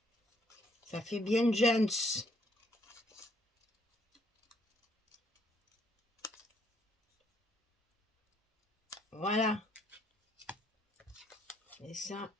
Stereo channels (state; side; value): normal; both; correlation 0.68